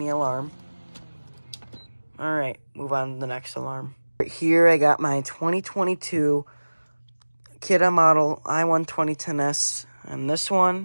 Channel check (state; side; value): inverted; both; correlation -1.00